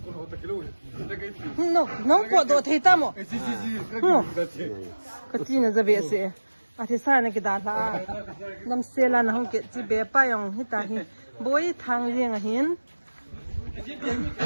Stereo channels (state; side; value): inverted; both; correlation -1.00